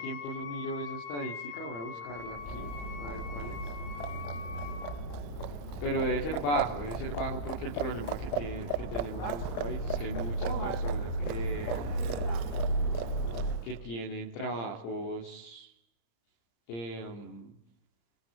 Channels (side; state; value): right; late; 35 ms